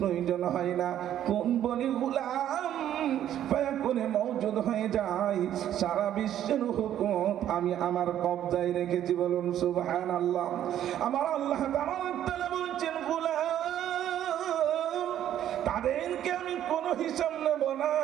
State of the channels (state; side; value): quieter; left; 11.2 dB